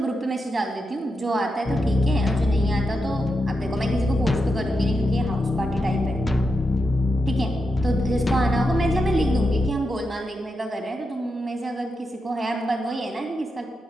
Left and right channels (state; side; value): normal; both; correlation 0.86